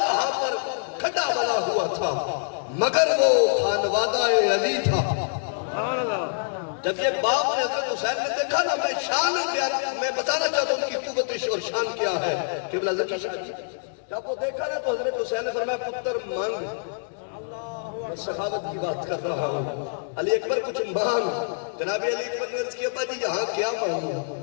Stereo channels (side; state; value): right; silent; digital silence